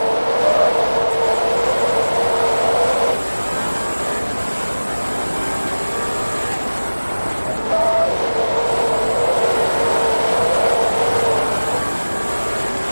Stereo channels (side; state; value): both; inverted; correlation -1.00